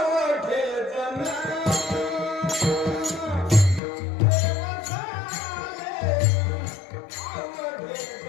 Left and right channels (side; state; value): right; drops out; at 3.8 s